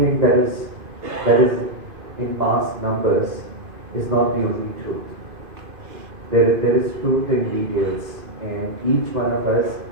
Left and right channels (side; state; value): left; late; 2.5 ms